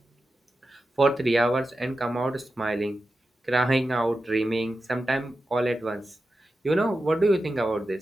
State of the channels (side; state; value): both; normal; correlation 0.91